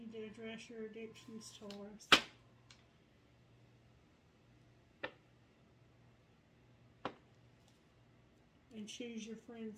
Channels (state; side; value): identical; both; correlation 1.00